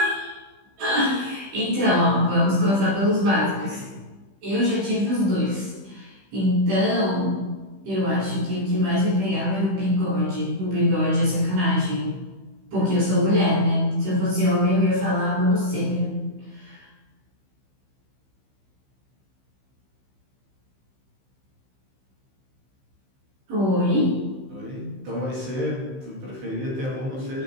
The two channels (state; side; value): late; left; 15 ms